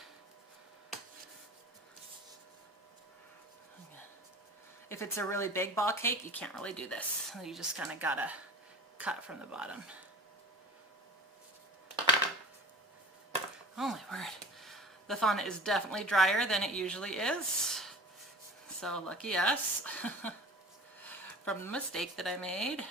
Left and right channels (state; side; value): normal; both; correlation 0.40